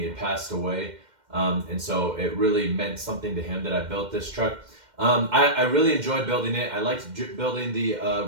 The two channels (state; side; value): late; left; 2.1 ms